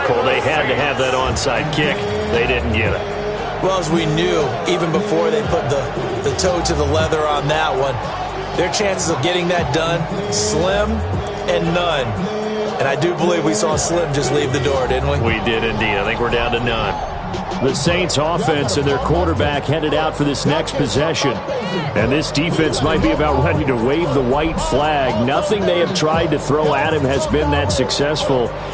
They had to have that onside kick. They didn't get it. Well, as we knew, even before they put the toe to the leather on that one, their chances of getting that done, slim and none. And I do believe we saw Slim just leave the door, didn't we? We did indeed. I think we're down to none. The Saints offense and their quarterback headed out for this next possession. And this defense might be about ready to wave the white flag. Nothing they have tried to throw at him has been that successful.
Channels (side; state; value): both; identical; correlation 1.00